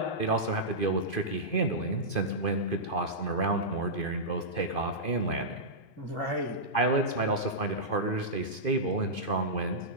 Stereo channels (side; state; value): right; late; 2.5 ms